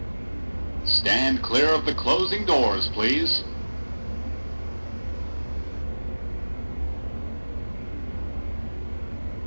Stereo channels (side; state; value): both; inverted; correlation -1.00